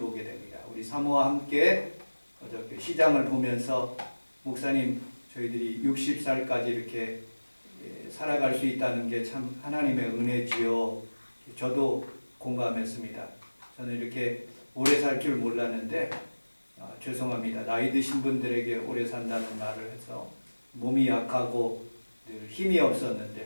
됩니다. 우리 사모와 함께 어저께 시장을 보면서 목사님 저희들이 60살까지 이렇게 살아갈 수 있다는 게 참 하나님의 은혜지요. 저도 공감했습니다. 저는 이렇게 오래 살 줄 몰랐는데 죄송합니다. 나이 드신 분들에게 오래 산다는 말을 해서 몸이 약하고 늘 힘이 없었는데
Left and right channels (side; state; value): both; inverted; correlation -1.00